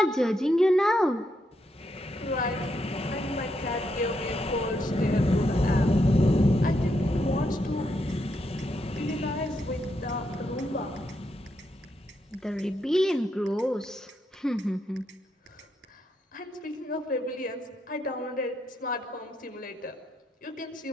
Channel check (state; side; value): normal; both; correlation 0.80